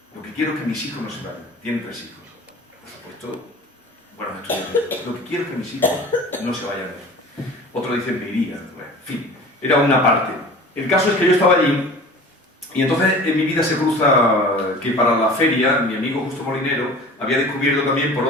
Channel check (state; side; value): normal; both; correlation 0.41